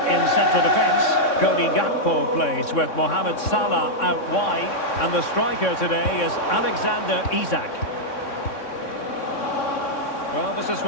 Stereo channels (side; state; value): right; late; 3.6 ms